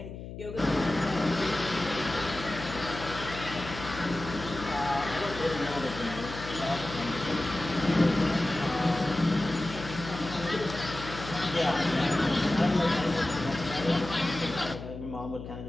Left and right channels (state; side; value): noise; left; hum, 10 dB below the sound